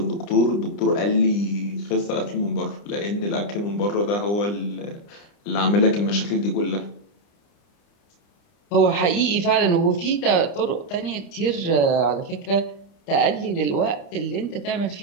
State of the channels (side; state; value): right; late; 30 ms